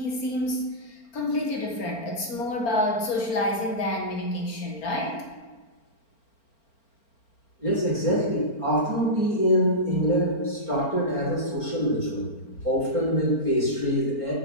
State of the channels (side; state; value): right; late; 4.4 ms